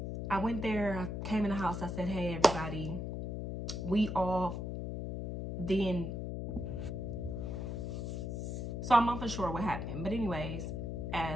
I went there, I came in the house, I said, hey, everybody, we all then. So I'm not for sure what happened. But anyways,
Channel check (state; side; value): noise; left; hum, 4 dB below the sound